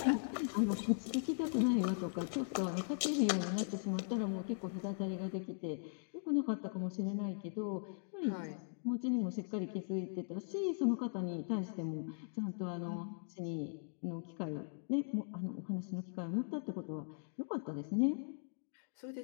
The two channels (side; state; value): right; silent; digital silence